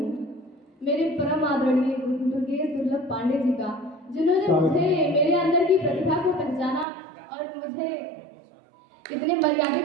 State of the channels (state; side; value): drops out; left; at 6.9 s